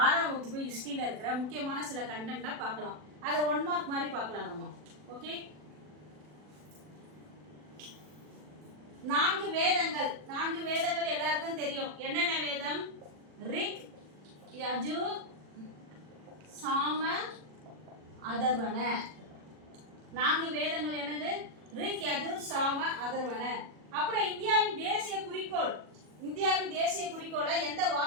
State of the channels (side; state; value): left; late; 40 ms